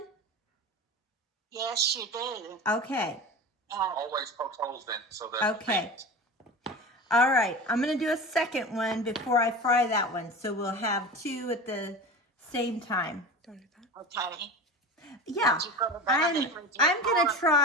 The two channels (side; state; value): both; normal; correlation 0.31